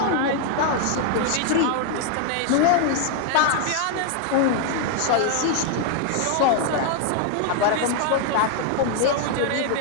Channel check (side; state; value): both; different; correlation 0.00